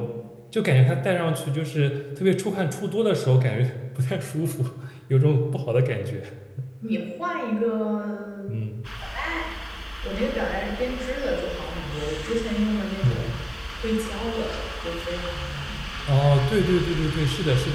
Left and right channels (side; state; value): both; identical; correlation 1.00